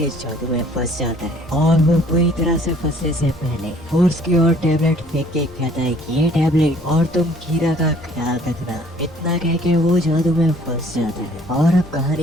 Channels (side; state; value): both; normal; correlation 0.57